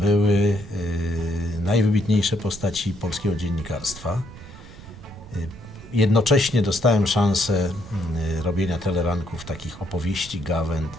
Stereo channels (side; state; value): right; noise; rumble, 17 dB below the sound